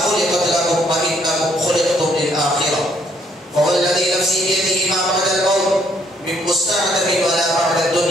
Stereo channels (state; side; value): normal; both; correlation 0.68